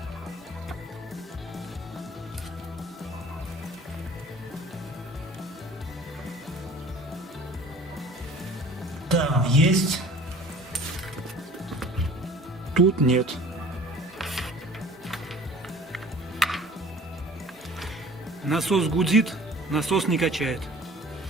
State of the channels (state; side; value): normal; both; correlation 0.47